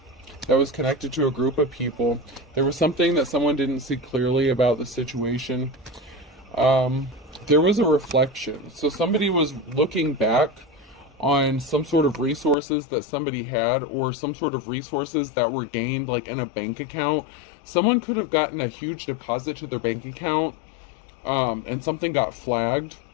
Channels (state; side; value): drops out; right; at 12.6 s